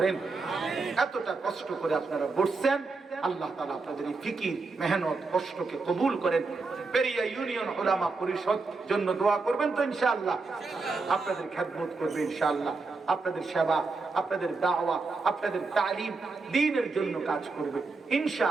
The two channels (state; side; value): quieter; left; 4.0 dB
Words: এতটা কষ্ট করে আপনারা বসছেন, আল্লাহ তাআলা আপনাদের এই ফিকির, মেহনত, কষ্টকে কবুল করেন। পেরিয়া ইউনিয়ন উলামা পরিষদ জন্য দোয়া করবেন তো ইনশাআল্লাহ, আপনাদের খেদমত করবে ইনশাআল্লাহ, আপনাদের সেবা, আপনাদের দাওয়া, আপনাদের তালিম, দ্বীনের জন্য কাজ করবে